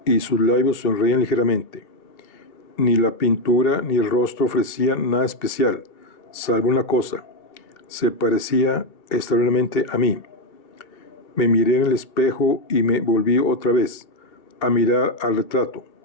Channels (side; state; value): right; late; 2.3 ms